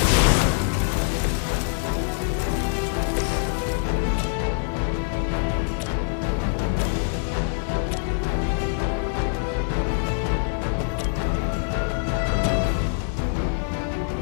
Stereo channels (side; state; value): right; silent; digital silence